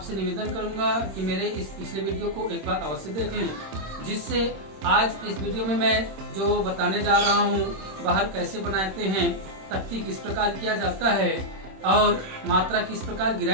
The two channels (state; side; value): late; left; 26 ms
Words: निवेदन करूंगा कि मेरे इस पिछले वीडियो को एक बार अवश्य देख लें, जिससे आज इस वीडियो में मैं जो बताने जा रहा हूं, बहर कैसे बनाते हैं, तख्ती किस प्रकार किया जाता है और मात्रा किस प्रकार